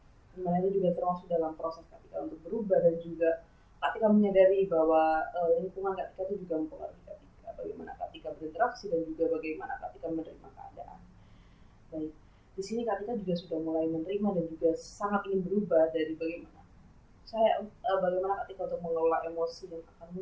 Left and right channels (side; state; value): both; identical; correlation 1.00